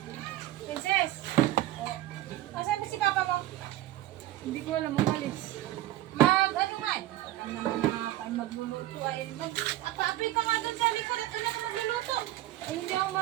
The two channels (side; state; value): left; quieter; 15.0 dB